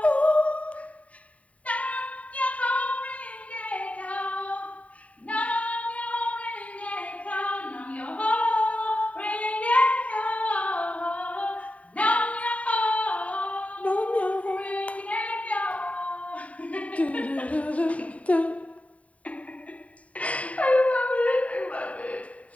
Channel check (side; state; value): right; late; 0.067 ms